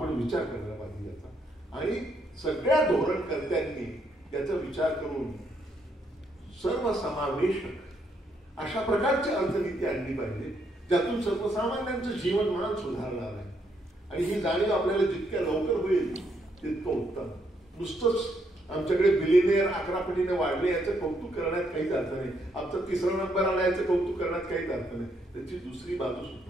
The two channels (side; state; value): both; normal; correlation 0.74